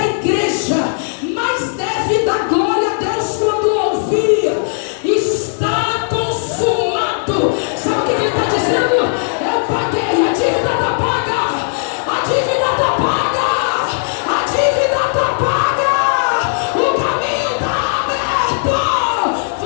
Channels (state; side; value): silent; right; digital silence